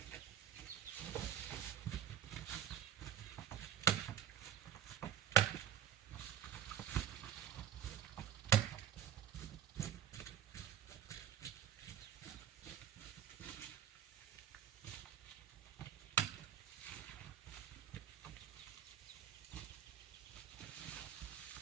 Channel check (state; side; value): quieter; left; 10.0 dB